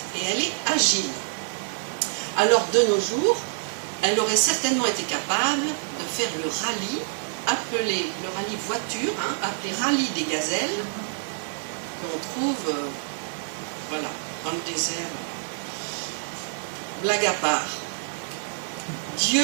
et elle est agile. Alors de nos jours, elle aurait certainement été capable de faire le rallye, appelé le rallye voiture, appelé rallye des gazelles, qu'on trouve voilà, dans le désert. Blague à part.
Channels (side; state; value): left; silent; digital silence